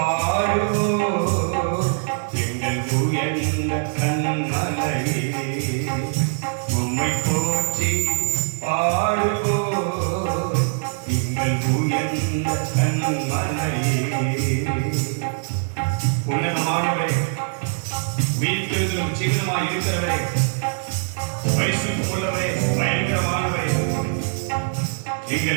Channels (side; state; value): left; silent; digital silence